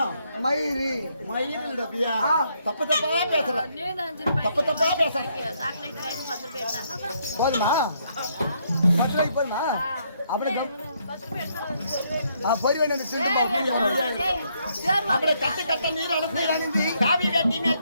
மயிர் ரபியா தப்பு தப்பா பேசுற போதுமா போதுமா அப்படி அப்படியே கட்டு கட்ட நீர் அழுந்து காவி வேட்டி மேல்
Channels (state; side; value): inverted; both; correlation -0.72